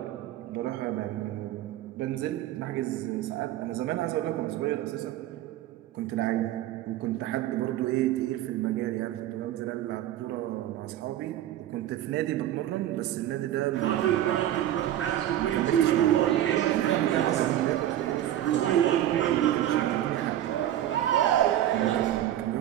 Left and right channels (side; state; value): left; quieter; 12.5 dB